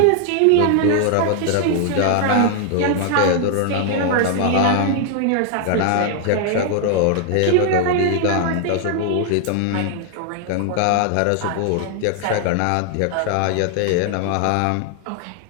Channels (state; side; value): different; both; correlation 0.00